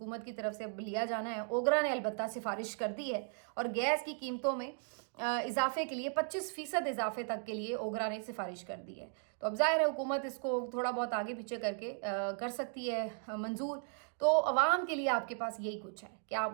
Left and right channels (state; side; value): silent; left; 53 dB below the other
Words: की तरफ से अब लिया जाना है। ओगरा ने अलबत्ता सिफारिश कर दी है और गैस की कीमतों में इजाफे के लिए 25% इजाफे तक के लिए ओगरा ने सिफारिश कर दी है। तो अब जाहिर है हुकूमत इसको थोड़ा बहुत आगे पीछे करके कर सकती है मंजूर। तो अवाम के लिए आपके पास यही कुछ है कि आप